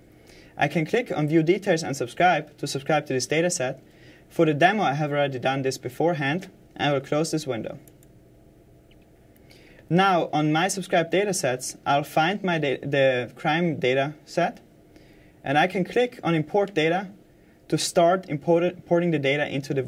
I can click on View Details and subscribe to this dataset. For the demo, I have already done this beforehand, and I will close this window. Now, on my subscribed datasets, I'll find the crime data set, and I can click on Import Data to start importing the data into the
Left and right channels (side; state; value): both; identical; correlation 1.00